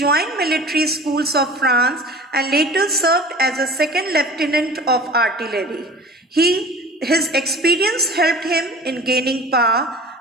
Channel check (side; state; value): both; normal; correlation 0.41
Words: military schools of France and later served as a second lieutenant of artillery. His experience helped him in gaining power.